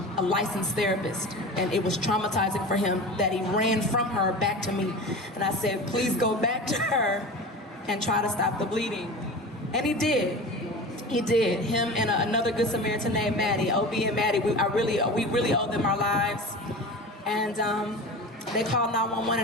licensed therapist, and it was traumatizing for him that he ran from her back to me. And I said, please go back to her and try to stop the bleeding. And he did. He did. Him and another Good Samaritan named Maddie, OB and Maddie, we really owe them our lives. And they called 911,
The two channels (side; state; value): both; normal; correlation 0.32